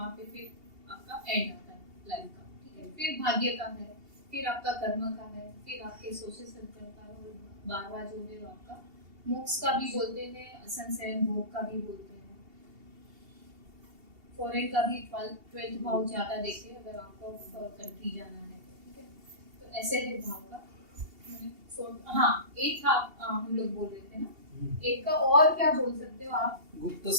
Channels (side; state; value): left; late; 2.8 ms